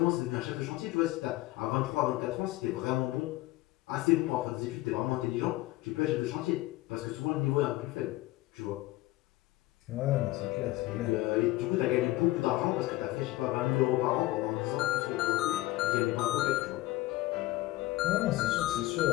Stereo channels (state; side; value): quieter; right; 17.8 dB